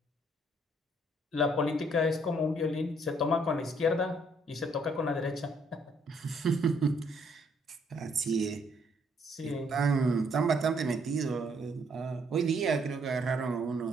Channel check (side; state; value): both; normal; correlation 0.67